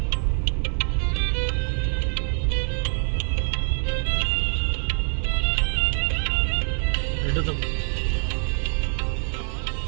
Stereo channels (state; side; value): silent; left; digital silence